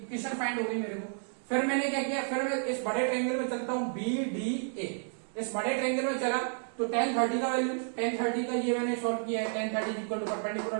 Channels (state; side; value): silent; left; 57 dB below the other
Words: फाइंड हो गई मेरे को। फिर मैंने क्या किया, फिर मैं इस बड़े ट्रायंगल में चलता हूं BDA। इस बड़े ट्रायंगल में चला तो tan 30 का वैल्यू, tan 30 का ये मैंने सॉल्व किया है। tan 30 equal to perpendicular